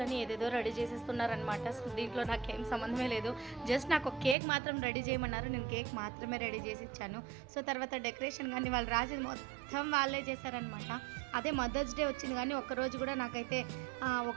ఏదేదో రెడీ చేసేస్తున్నారనమాట. సో దీంట్లో నాకేం సంబంధమే లేదు. జస్ట్ నాకు ఒక కేక్ మాత్రం రెడీ చేయమన్నారు. నేను కేక్ మాత్రమే రెడీ చేసి ఇచ్చాను. సో తర్వాత డెకరేషన్ కానీ వాళ్ళు రాసేది మొత్తం వాళ్ళే చేశారనమాట. అదే మదర్స్ డే వచ్చింది కానీ ఒక్కరోజు కూడా నాకైతే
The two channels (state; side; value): drops out; left; at 4.4 s